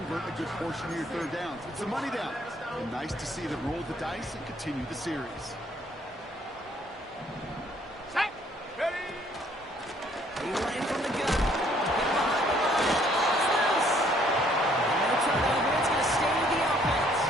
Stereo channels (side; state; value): both; normal; correlation 0.63